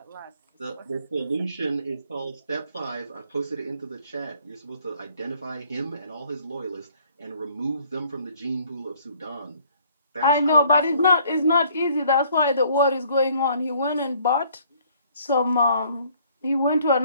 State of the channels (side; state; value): both; inverted; correlation -0.61